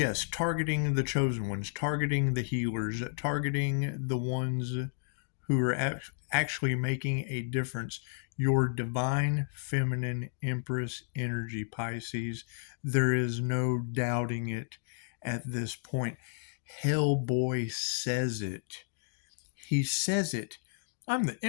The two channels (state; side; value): silent; right; digital silence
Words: targeting the chosen ones, targeting the healers, targeting the ones who are actually making a difference. Your divine feminine Empress energy, Pisces. There is no doubting it at this point. Hellboy says it. He says it. I'm the